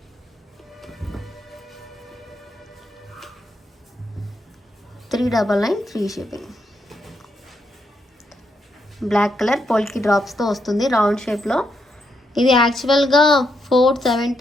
$399 ఫ్రీ షిప్పింగ్. బ్లాక్ కలర్ పోల్కి డ్రాప్స్తో వస్తుంది రౌండ్ షేప్లో. ఇది యాక్చువల్గా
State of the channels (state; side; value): normal; both; correlation 0.79